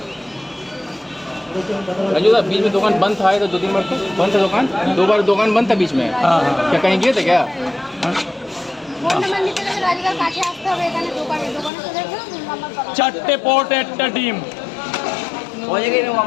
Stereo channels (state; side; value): drops out; right; at 11.7 s